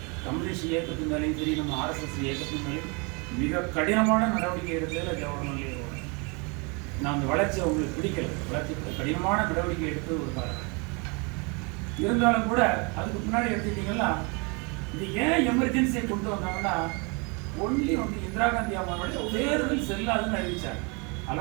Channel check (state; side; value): quieter; left; 31.4 dB